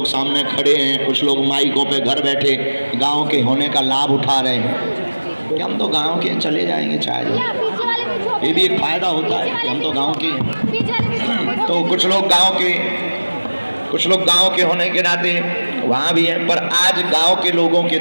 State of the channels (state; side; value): inverted; both; correlation -1.00